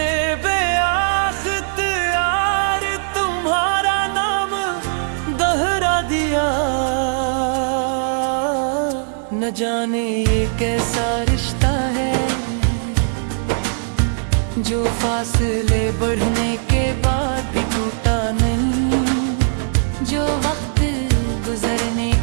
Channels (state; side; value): silent; left; 66 dB below the other